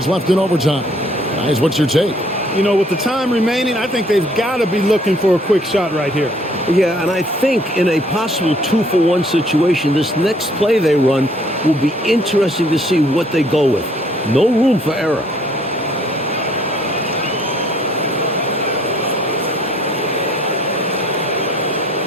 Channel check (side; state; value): both; normal; correlation 0.61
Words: left in overtime. Guys, what's your take? You know, with the time remaining, I think they've got to be looking for a quick shot right here. Yeah, and I think in a possible 2-for-1 situation, this next play they run will be interesting to see what they go with. No room for error.